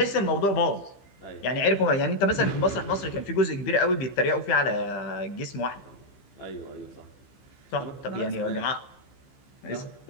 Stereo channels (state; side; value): late; right; 15 ms